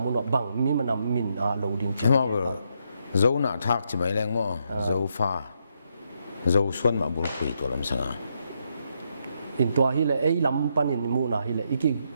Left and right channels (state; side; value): inverted; both; correlation -0.78